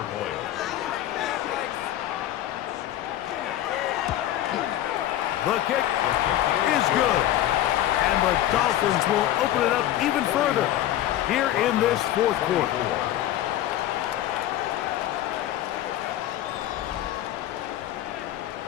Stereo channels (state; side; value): quieter; right; 13.0 dB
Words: The kick is good. And the Dolphins will open it up even further here in this 4th quarter.